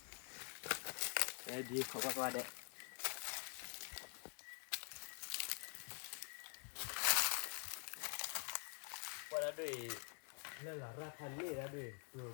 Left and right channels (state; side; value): quieter; right; 38.4 dB